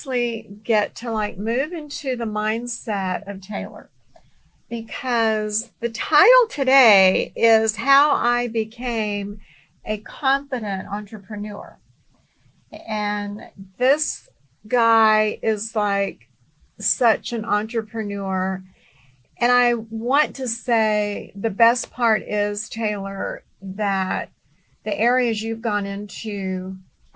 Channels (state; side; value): identical; both; correlation 1.00